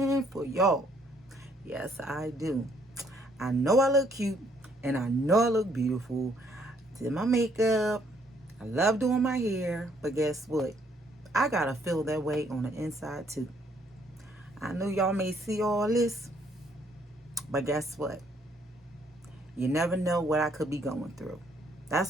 for y'all. Yes, I do. I know I look cute and I know I look beautiful. Did my makeup. I love doing my hair, but guess what? I gotta feel that way on the inside too. I know y'all may see all this, but guess what? You never know what I could be going through.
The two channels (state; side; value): normal; both; correlation 0.67